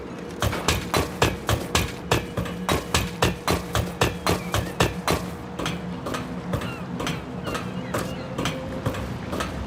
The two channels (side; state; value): both; identical; correlation 1.00